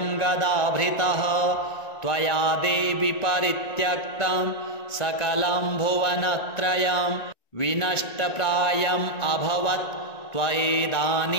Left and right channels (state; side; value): late; right; 1.9 ms